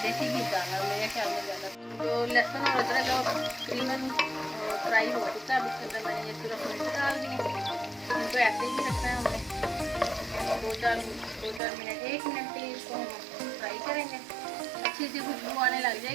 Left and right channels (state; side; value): drops out; left; at 11.6 s